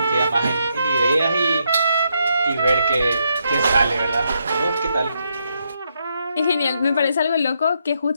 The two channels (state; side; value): inverted; both; correlation -0.79